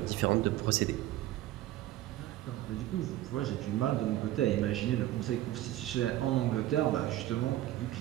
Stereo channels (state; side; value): quieter; left; 14.6 dB